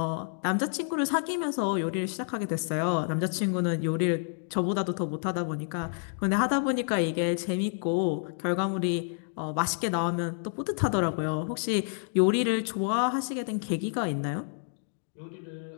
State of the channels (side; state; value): right; silent; digital silence